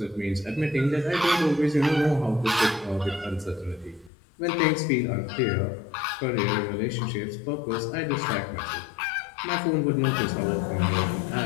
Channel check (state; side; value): drops out; right; at 4.1 s